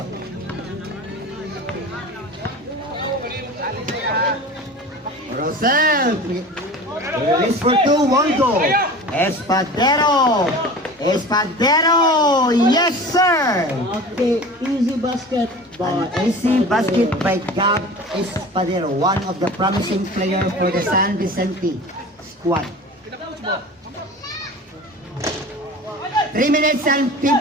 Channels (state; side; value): normal; both; correlation 0.37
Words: Rosel, release for 2, 1 goal. Espadero, yes sir. Okay, easy basket. An easy basket by Gab Espadero, one of the promising players for the San Vicente squad. 3 minutes and